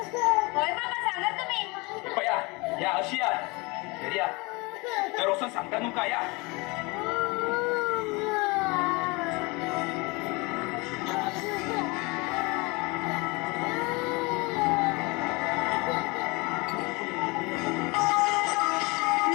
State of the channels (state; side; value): quieter; right; 26.3 dB